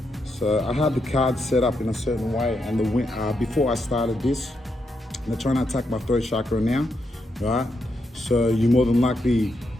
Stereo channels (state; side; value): normal; both; correlation 0.82